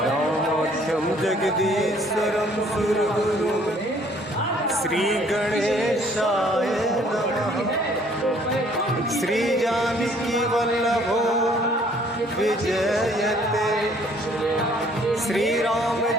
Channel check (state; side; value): normal; both; correlation 0.60